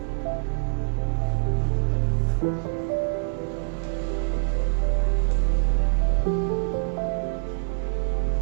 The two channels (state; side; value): silent; left; 60 dB below the other